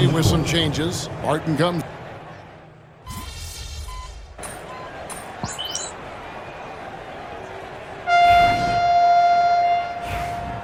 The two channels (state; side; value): identical; both; correlation 1.00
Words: with some changes. Barton comes.